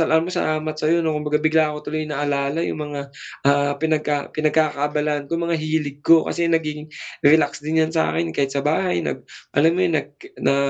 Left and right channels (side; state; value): both; identical; correlation 1.00